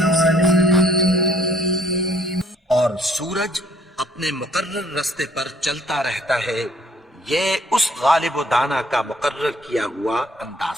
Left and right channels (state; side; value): normal; both; correlation 0.62